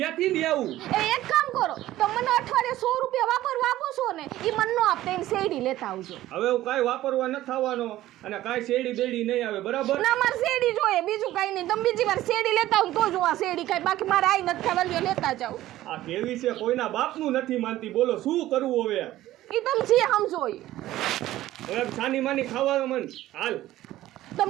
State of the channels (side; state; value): left; quieter; 14.9 dB